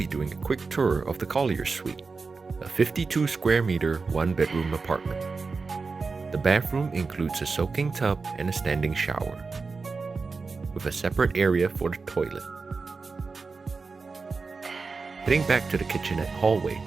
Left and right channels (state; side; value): quieter; left; 4.4 dB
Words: doing a quick tour of the Collier Suite, a 52 square meter, one bedroom apartment. The bathroom includes a soaking tub and a standing shower, with a separate area for the toilet. Heading back to the kitchenette hallway,